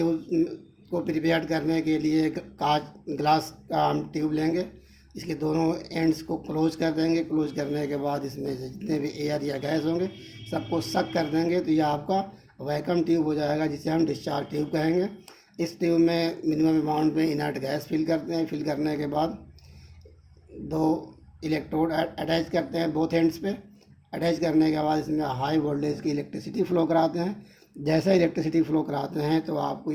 को प्रिपेयर करने के लिए ग्लास का हम ट्यूब लेंगे, इसके दोनों एंड्स को क्लोज कर देंगे। क्लोज करने के बाद इसमें से जितने भी एयर या गैस होंगे सबको सक कर देंगे, तो यह आपका वैक्यूम ट्यूब हो जाएगा, जिसे हम डिस्चार्ज ट्यूब कहेंगे। इस ट्यूब में मिनिमम अमाउंट में इनर्ट गैस फिल करते हैं। फिल करने के बाद 2 इलेक्ट्रोड अटैच करते हैं बोथ एंड्स पे। अटैच करने के बाद इसमें हाई वोल्टेज की इलेक्ट्रिसिटी फ्लो कराते हैं। जैसे इलेक्ट्रिसिटी फ्लो कराते हैं तो आपको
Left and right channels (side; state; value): both; identical; correlation 1.00